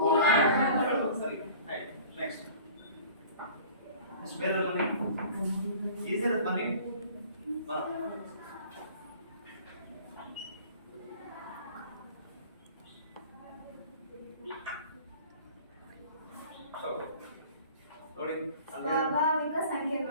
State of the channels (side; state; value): both; inverted; correlation -0.46